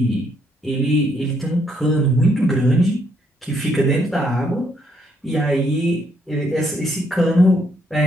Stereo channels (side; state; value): both; normal; correlation 0.72